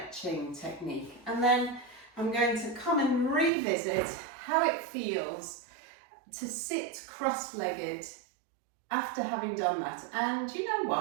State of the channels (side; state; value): left; drops out; at 3.5 s